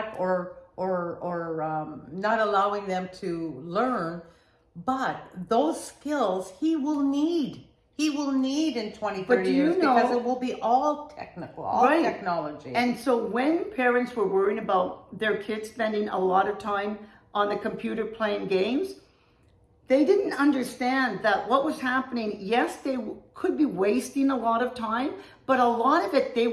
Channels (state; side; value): identical; both; correlation 1.00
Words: or not allowing them to learn. But those skills he will need in 20, 30 years, because it will be all technical, all technology. And so when parents were worrying about their kids spending a lot of time on the computer playing games, they didn't understand that what was happening. Yes, they could be wasting a lot of time, but a lot of it, they